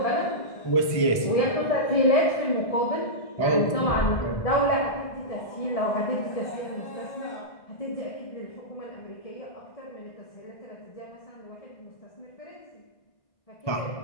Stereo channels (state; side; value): late; right; 1.6 ms